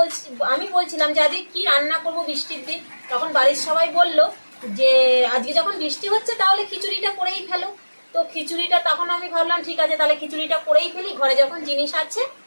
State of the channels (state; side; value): inverted; both; correlation -1.00